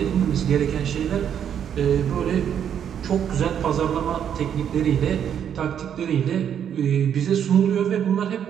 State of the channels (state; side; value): quieter; left; 8.8 dB